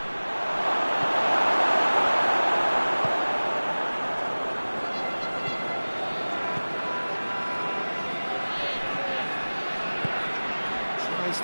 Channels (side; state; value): both; inverted; correlation -1.00